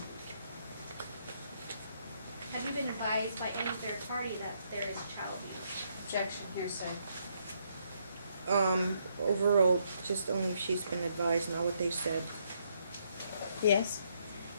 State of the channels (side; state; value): both; inverted; correlation -0.74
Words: Have you been advised by any third party that there is child abuse? Objection, hearsay. Overall, just only if she's been advised, not what they said. Yes.